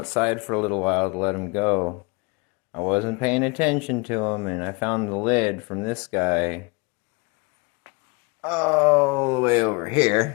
for a little while to let them go. I wasn't paying attention to them, and I found the lid from this guy all the way over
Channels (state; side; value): quieter; right; 29.0 dB